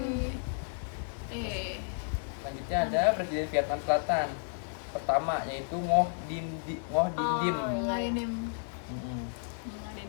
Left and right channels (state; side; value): silent; right; digital silence